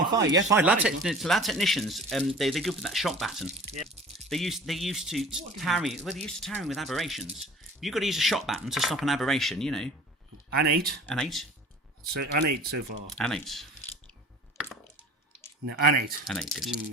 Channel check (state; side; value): normal; both; correlation 0.44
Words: on 5. Yeah, 5. Lab technicians. They're good with that shock baton. Yeah. They used to tarry. Well, they used to tarry with aberrations. You've got to use a shock baton to stop an aberration. You know. An 8. An 8. So an 8 so far. An 8. No, an 8. An 8. Good.